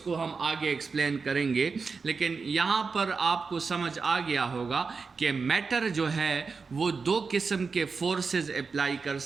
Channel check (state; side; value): quieter; left; 4.8 dB